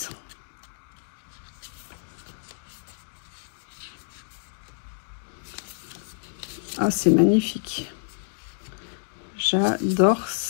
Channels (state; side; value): silent; right; digital silence